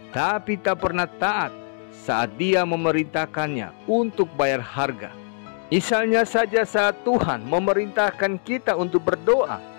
tapi tak pernah taat saat Dia memerintahkannya untuk bayar harga. Misalnya saja saat Tuhan memerintahkan kita untuk berdoa,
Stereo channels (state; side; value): silent; right; digital silence